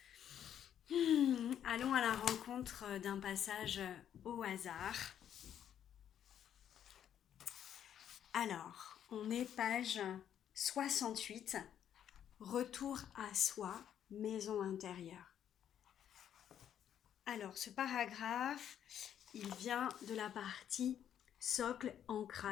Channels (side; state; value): right; quieter; 9.8 dB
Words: Allons à la rencontre d'un passage au hasard. Alors, on est page 68, Retour à soi, maison intérieure. Alors, ce paragraphe, il vient de la partie socle,